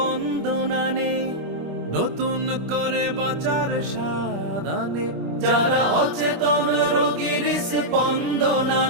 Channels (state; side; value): late; left; 25 ms